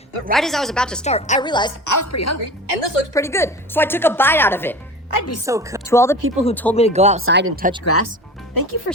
but right as I was about to start, I realized I was pretty hungry, and this looks pretty good, so I took a bite out of it. I'd be so cooked. To all the people who told me to go outside and touch grass, thank you for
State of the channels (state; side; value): normal; both; correlation 0.34